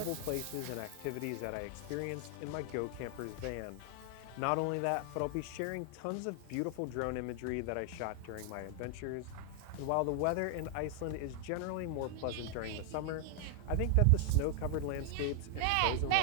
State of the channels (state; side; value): different; both; correlation 0.00